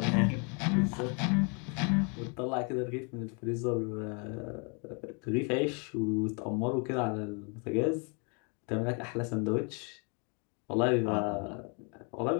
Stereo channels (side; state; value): right; quieter; 36.1 dB